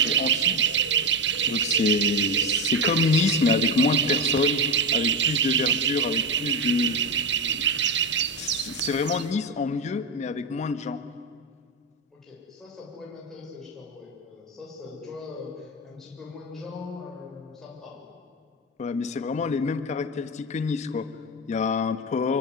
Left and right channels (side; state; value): both; normal; correlation 0.14